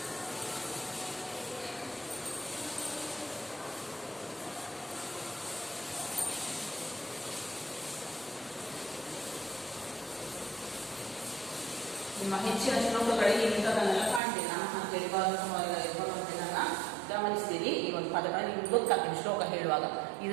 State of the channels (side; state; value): left; drops out; at 14.2 s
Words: ನಿಮ್ಮ ಹೆಚ್ಚಿನ ಶ್ಲೋಕಗಳಿಗೆ ಇಂಥದನ್ನೆಲ್ಲ ಕಾಣ್ತೀನಿ. ನಾನು ಅಂತೇಳಿ ಭಗವಂತನನ್ನ ಗಮನಿಸ್ತೀರಿ. ಈ ಒಂದು ಪದಗಳನ್ನು ನಿಮ್ಗೆ ಗೊತ್ತಾಗ್ತೀನಿ ಶ್ಲೋಕ ಹೇಳುವಾಗ. ಇದು